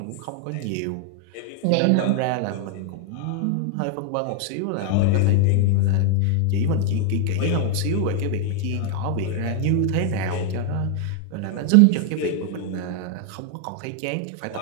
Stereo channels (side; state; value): both; different; correlation 0.00